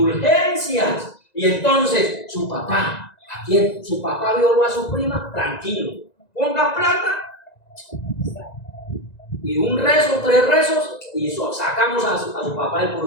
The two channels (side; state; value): right; late; 1.9 ms